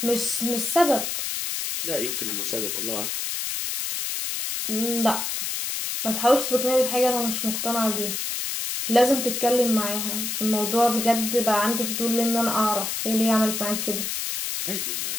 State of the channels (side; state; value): left; noise; hiss, 2 dB below the sound